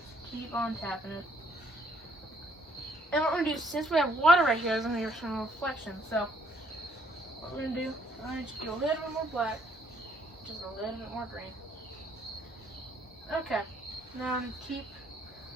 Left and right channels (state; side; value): normal; both; correlation 0.66